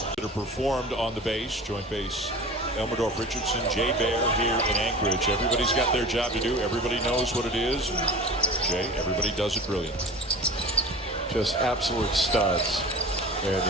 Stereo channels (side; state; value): both; normal; correlation 0.37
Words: That are performed on the base, joint base. Elmendorf, Richardson, Jay Bear here in Anchorage. Everybody's got their job to do. Everybody knows what it is. And Jay, everybody does it brilliant. Just absolute studs